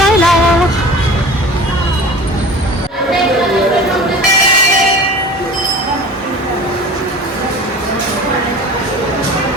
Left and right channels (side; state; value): both; normal; correlation 0.39